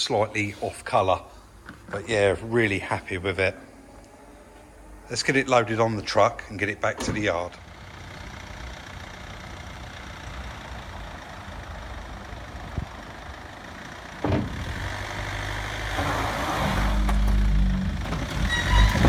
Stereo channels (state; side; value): identical; both; correlation 1.00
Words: off colour. But yeah, really happy with it. Let's get it loaded on the truck and get it back to the yard.